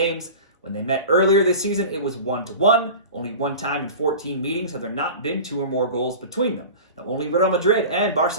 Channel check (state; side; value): inverted; both; correlation -0.35